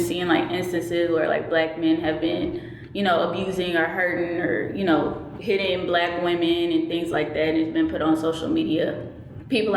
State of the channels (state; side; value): identical; both; correlation 1.00